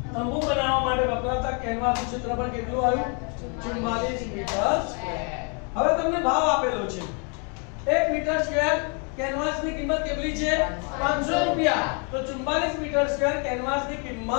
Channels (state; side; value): quieter; right; 37.1 dB